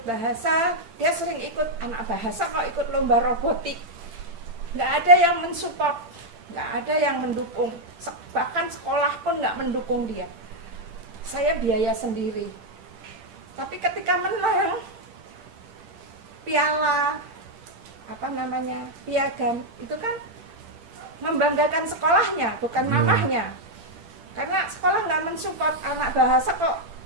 Dia sering ikut anak bahasa, kok ikut lomba robotik. Nggak ada yang mensupport, nggak ada yang mendukung. Bahkan sekolah pun nggak mendukung dia. saya biaya sendiri. Tapi ketika menang piala piagam itu kan membanggakan sekolahnya, bukan mamahnya. Karena sekolah nggak mensupport anak bahasa kok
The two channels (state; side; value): late; left; 10 ms